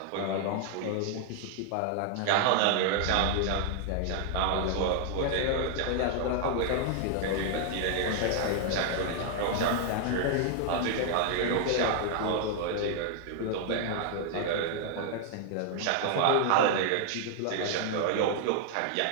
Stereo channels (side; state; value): both; different; correlation 0.00